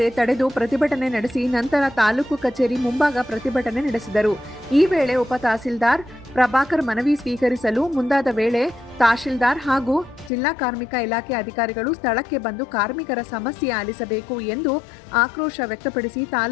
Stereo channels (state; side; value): drops out; right; at 10.3 s